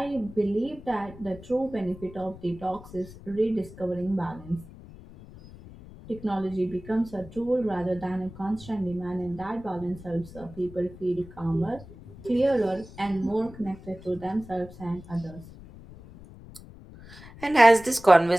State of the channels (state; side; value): noise; left; rumble, 18 dB below the sound